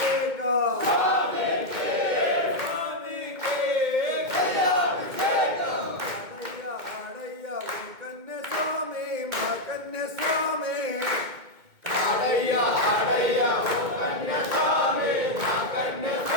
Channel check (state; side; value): late; left; 2.2 ms